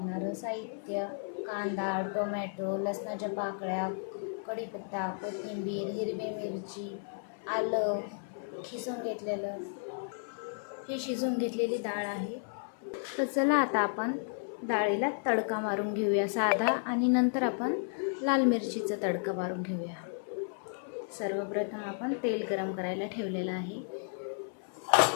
साहित्य: कांदा, टोमॅटो, लसणाच्या पाकळ्या, कढीपत्ता, कोथिंबीर, हिरवी मिरची, आलं खिसून घेतलेलं. ही शिजून घेतलेली डाळ आहे. तर चला आता आपण डाळीला तडका मारून घेऊया साधा, आणि नंतर आपण लाल मिरचीचा तडका मारून घेऊया. सर्वप्रथम आपण तेल गरम करायला ठेवलेलं आहे.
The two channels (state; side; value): silent; right; 56 dB below the other